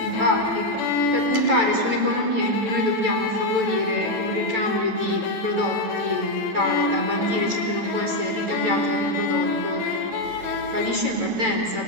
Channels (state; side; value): late; left; 9.0 ms